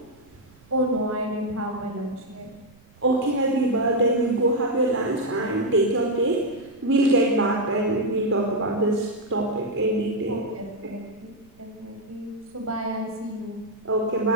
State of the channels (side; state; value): right; noise; rumble, 29 dB below the sound